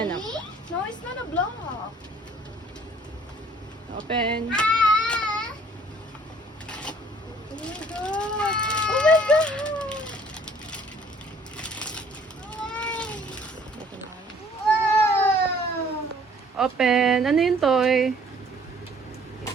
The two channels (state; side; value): normal; both; correlation 0.57